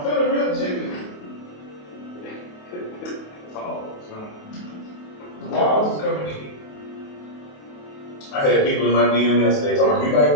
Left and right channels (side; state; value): right; late; 28 ms